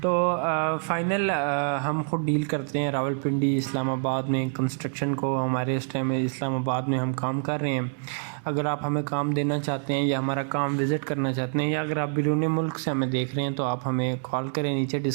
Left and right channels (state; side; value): silent; left; 61 dB below the other